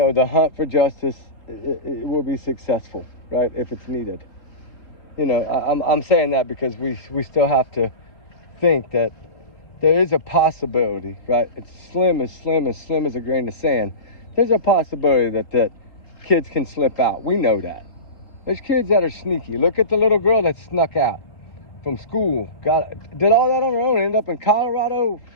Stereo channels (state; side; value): late; right; 3.6 ms